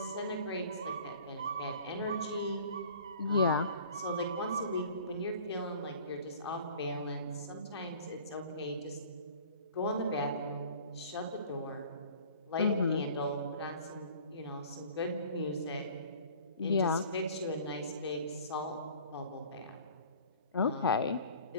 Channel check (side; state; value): both; inverted; correlation -0.48